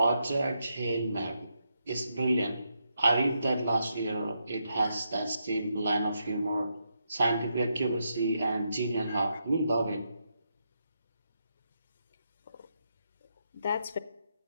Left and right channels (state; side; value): inverted; both; correlation -0.82